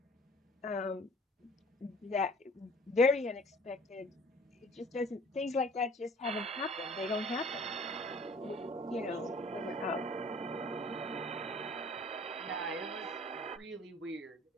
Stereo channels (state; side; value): normal; both; correlation 0.51